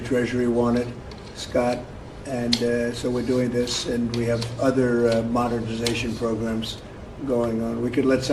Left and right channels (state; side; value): identical; both; correlation 1.00